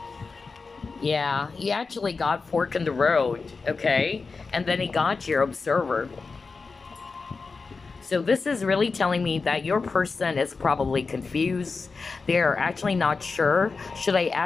Yeah, he actually got fork in the road, okay? And then he got your observer. So this is really telling me that your person is probably confused. They're actually not sure. Should I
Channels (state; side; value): quieter; right; 4.4 dB